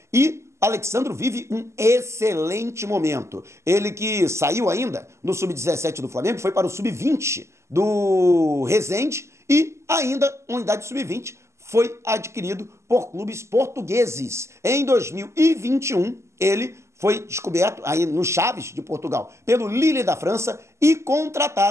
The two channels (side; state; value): left; late; 0.13 ms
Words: E Alexandro vive um excelente momento. Ele que saiu ainda no Sub-17 do Flamengo, foi para o Sub-20 do Resende e ainda, unidade Sub-20, foi adquirido por clubes portugueses. Em 2021, ele foi descoberto aí no Chaves de Portugal pelo Lille da França e